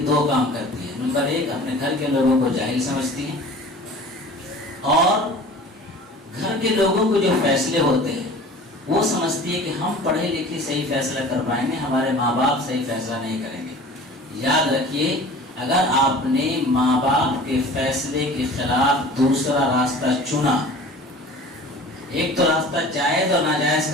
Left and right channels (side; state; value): both; normal; correlation 0.42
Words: دو کام کرتی ہیں. نمبر ایک, اپنے گھر کے لوگوں کو جاہل سمجھتی ہیں اور گھر کے لوگوں کو جو فیصلے ہوتے ہیں وہ سمجھتی ہے کہ ہم پڑھے لکھے صحیح فیصلہ کر پائیں گے, ہمارے ماں باپ صحیح فیصلہ نہیں کریں گے. یاد رکھیے, اگر آپ نے ماں باپ کے فیصلے کے خلاف دوسرا راستہ چنا, ایک تو راستہ جائز اور ناجائز